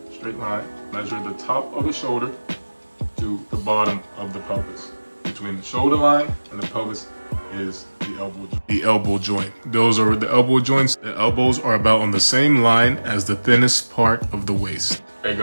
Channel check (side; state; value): both; inverted; correlation -1.00